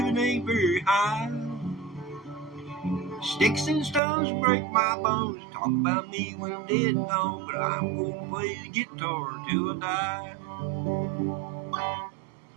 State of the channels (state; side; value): drops out; left; at 4.0 s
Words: ain't very high. Sticks and stones break my bones. Talk about me when I'm dead and gone, but I'm going to play the guitar till I die.